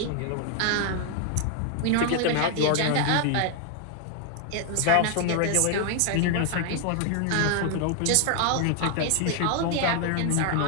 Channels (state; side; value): different; both; correlation 0.00